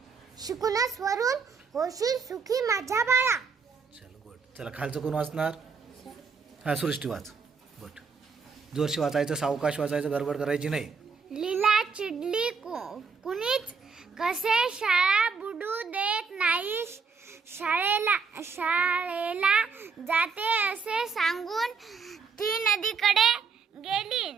शिकूनच वरून होशील सुखी माझ्या बाळा. चलो गुड. चला खालचं कोण वाचणार? हा सृष्टी वाच. गुड. जोरशी वाचायचं, सावकाश वाचायचं, गडबड करायची नाही. लीला चिडली कुणीच कसे शाळा बुडू देत नाही. शाळेला जाते असे सांगून ती नदीकडे गेली.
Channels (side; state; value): left; quieter; 5.2 dB